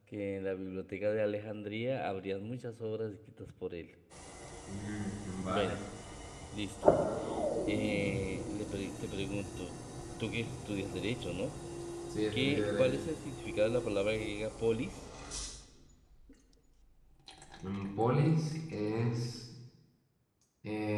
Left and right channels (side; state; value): both; identical; correlation 1.00